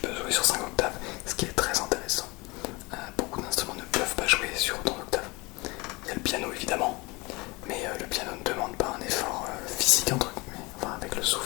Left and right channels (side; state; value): right; quieter; 24.9 dB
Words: sur 5 octaves, ce qui est très intéressant. Beaucoup d'instruments ne peuvent pas jouer sur autant d'octaves. Il y a le piano évidemment, mais le piano ne demande pas un effort physique entre guillemets, enfin avec le